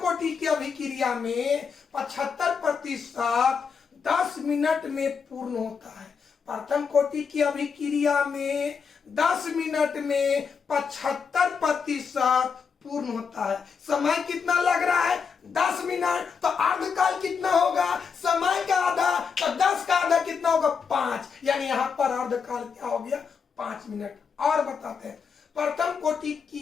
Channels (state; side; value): quieter; right; 6.0 dB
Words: की अभिक्रिया में 75% 10 मिनट में पूर्ण होता है। प्रथम कोटि की अभिक्रिया में 10 मिनट में 75% पूर्ण होता है। समय कितना लग रहा है? 10 मिनट। तो अर्धकाल कितना होगा? समय का आधा, तो 10 का आधा कितना होगा? 5। यानी यहां पर अर्धकाल क्या हो गया? 5 मिनट। और बताते हैं, प्रथम कोटि